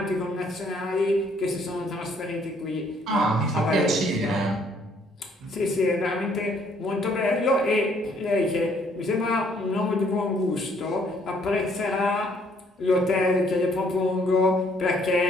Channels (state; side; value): normal; both; correlation 0.65